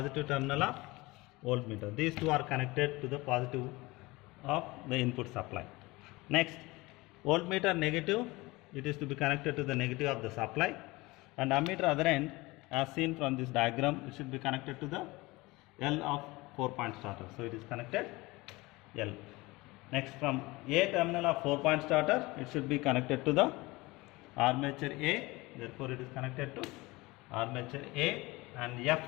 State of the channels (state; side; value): quieter; right; 22.1 dB